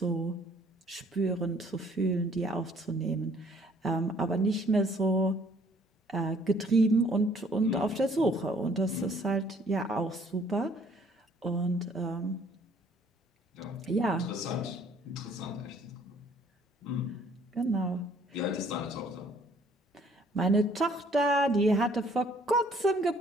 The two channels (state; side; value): normal; both; correlation 0.60